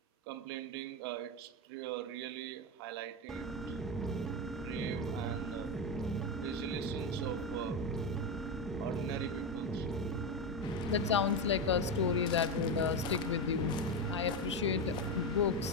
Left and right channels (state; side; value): normal; both; correlation 0.13